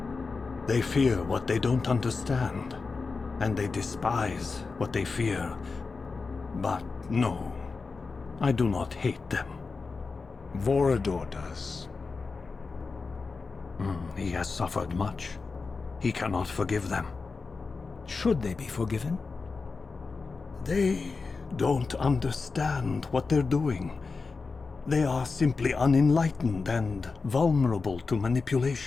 They fear what they don't understand, and they despise what they fear. But no, I do not hate them. Vorador does. He has suffered much. He cannot forgive them. Should they be forgiven? They don't understand what they're doing. They are simply unenlightened and vulnerable to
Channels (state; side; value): quieter; right; 4.4 dB